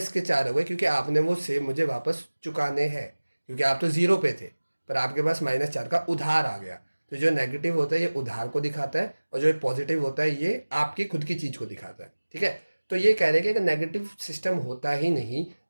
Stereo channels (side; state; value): both; inverted; correlation -1.00